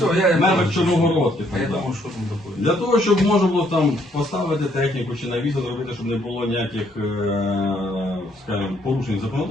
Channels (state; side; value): normal; both; correlation 0.69